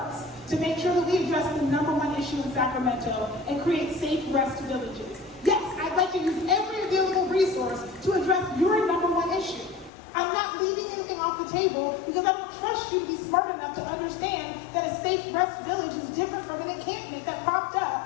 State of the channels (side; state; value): right; drops out; at 9.9 s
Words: to make sure that we address the #1 issue in Sacramento and create safe rest villages. Yes, I'd like to use every available resource to address your #1 issue. I'm not leaving anything off the table because I don't trust you to be smart enough to understand that a safe rest village is different from an encampment that popped